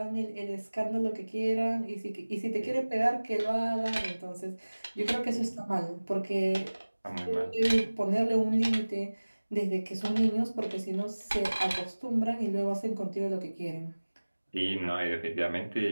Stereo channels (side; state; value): both; inverted; correlation -1.00